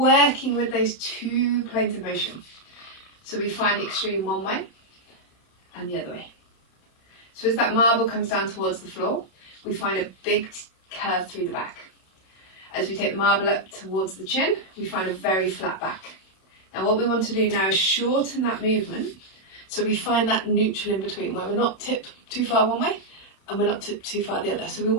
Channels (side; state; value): right; late; 31 ms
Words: with those two planes of motion. So we find the extreme one way and the other way. So as that marble comes down towards the floor, we find a big curve through the back. As we take the marble up towards the chin, we find a very flat back. Now what we want to do now is shorten that movement so we find that neutral in between where we're not tipped too far one way and we're not tipped too far the other. So we